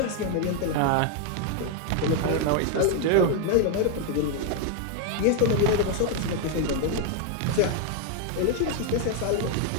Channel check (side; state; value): both; different; correlation 0.01